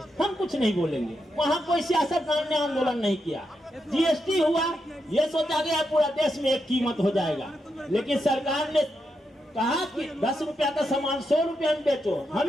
हम कुछ नहीं बोलेंगे। वहां कोई सियासतदान ने आंदोलन नहीं किया। जीएसटी हुआ, ये सोचा गया पूरा देश में एक कीमत हो जाएगा, लेकिन सरकार ने कहा कि 10 रुपया का सामान 100 रुपया में बेचो,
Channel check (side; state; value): both; normal; correlation 0.84